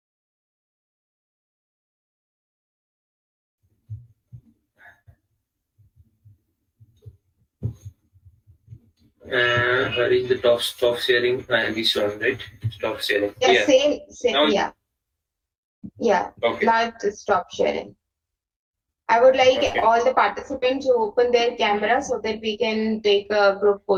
Where is the stop sharing? This one, right? Stop sharing. Yeah. Same. Now, Yeah. Okay. Now to stop sharing. I would like Okay. all the participants to open their camera so that we can take a group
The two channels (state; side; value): identical; both; correlation 1.00